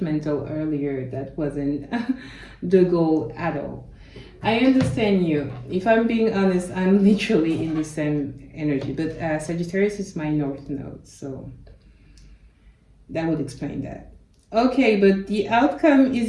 earlier. That wasn't the goal at all. I understand you. If I'm being honest, I'm literally in the same energy, but Sagittarius is my North Node, so that would explain that. Okay, but the outcome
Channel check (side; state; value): both; identical; correlation 1.00